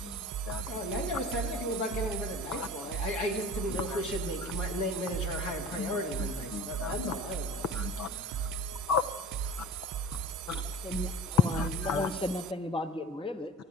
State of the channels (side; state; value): both; normal; correlation 0.38